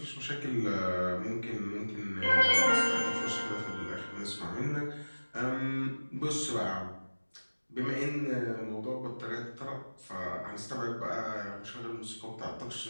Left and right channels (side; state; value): both; inverted; correlation -1.00